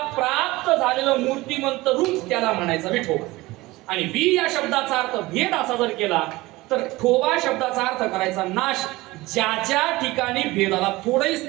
प्राप्त झालेलं मूर्तिमंत रूप त्याला म्हणायचं विठोबा आणि वि या शब्दाचा अर्थ भेद असा जर केला तर ठोबा शब्दाचा अर्थ करायचा नाश ज्या ठिकाणी भेदाला थोडंही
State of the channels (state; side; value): quieter; left; 20.1 dB